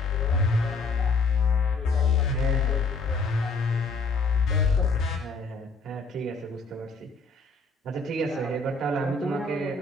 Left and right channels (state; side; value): quieter; right; 3.9 dB